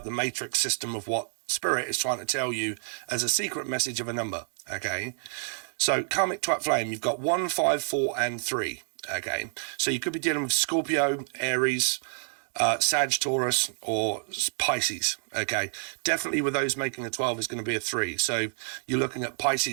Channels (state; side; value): silent; left; digital silence